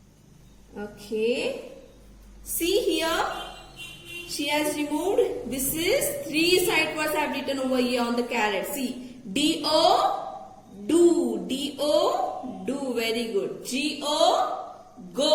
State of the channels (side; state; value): both; identical; correlation 1.00